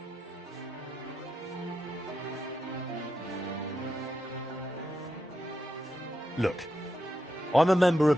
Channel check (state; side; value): normal; both; correlation 0.85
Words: Look, I'm a member